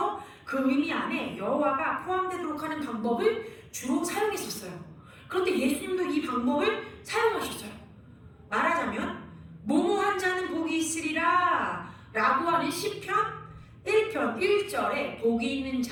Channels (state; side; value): identical; both; correlation 1.00